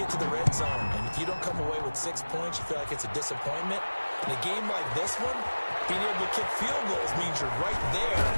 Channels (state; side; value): inverted; both; correlation -1.00